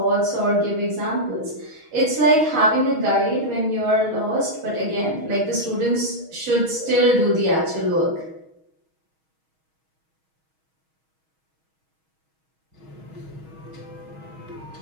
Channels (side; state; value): left; late; 6.3 ms